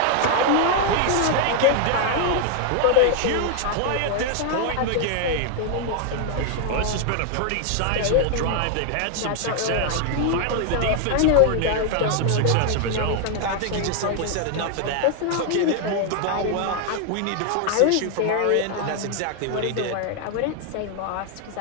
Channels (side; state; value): both; different; correlation 0.00